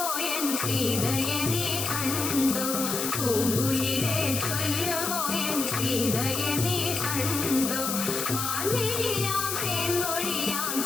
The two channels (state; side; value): noise; left; hiss, 2 dB below the sound